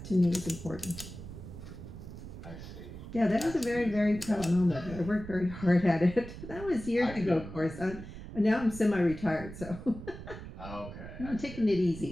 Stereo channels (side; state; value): right; noise; rumble, 12 dB below the sound